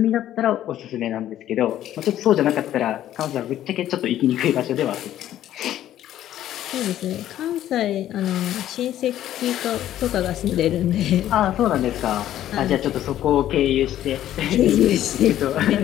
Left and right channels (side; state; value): right; quieter; 12.3 dB